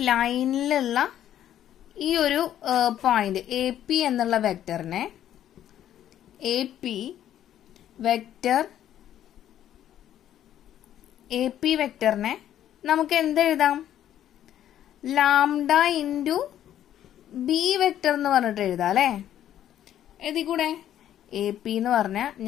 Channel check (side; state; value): right; quieter; 11.2 dB